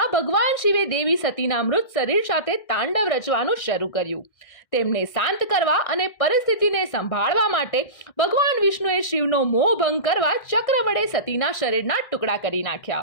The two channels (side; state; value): right; late; 1.6 ms